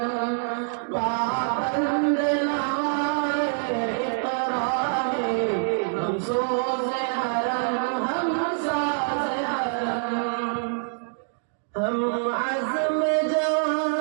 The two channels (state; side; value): silent; left; digital silence